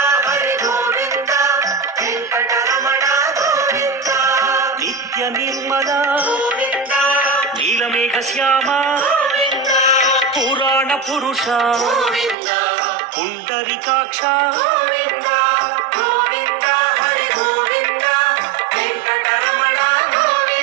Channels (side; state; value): left; drops out; at 12.4 s